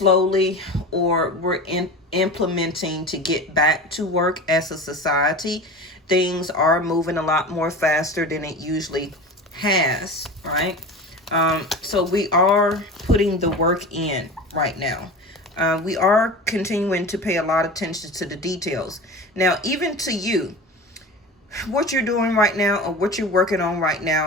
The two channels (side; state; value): both; normal; correlation 0.32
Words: or we're implementing to get back to work as a society. Things are moving a lot more faster than it usually has, right? So we are putting the work in right now. We are continuing to pay a lot of attention to the details. Now, even to you, what you're doing right now or what you're working on right